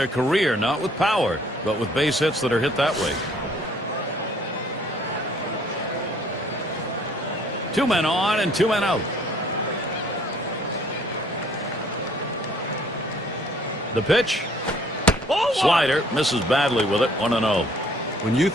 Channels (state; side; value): normal; both; correlation 0.59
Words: career, not with power, but with base hits that are hit that way. 2 men on and 2 men out. The pitch. Slider misses badly with it. 1-0. When you